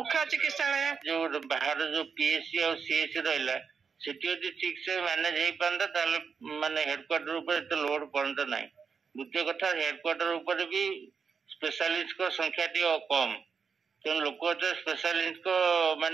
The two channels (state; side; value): quieter; left; 5.8 dB